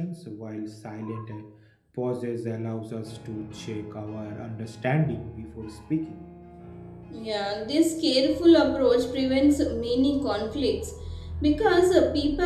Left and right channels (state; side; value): identical; both; correlation 1.00